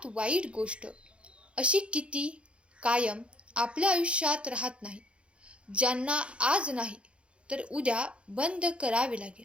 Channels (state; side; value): late; left; 0.059 ms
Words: वाईट गोष्ट अशी किती कायम आपल्या आयुष्यात राहत नाही, ज्यांना आज नाही तर उद्या बंद करावे लागेल.